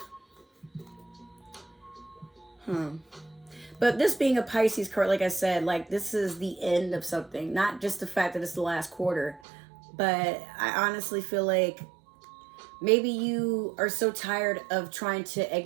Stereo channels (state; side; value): drops out; left; at 9.4 s